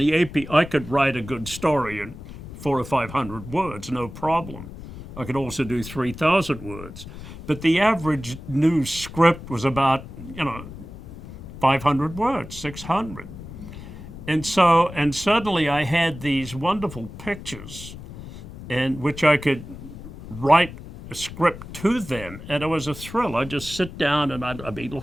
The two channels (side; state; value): left; noise; rumble, 13 dB below the sound